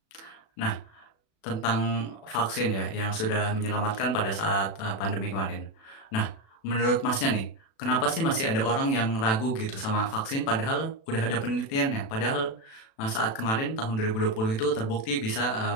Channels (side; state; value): right; late; 36 ms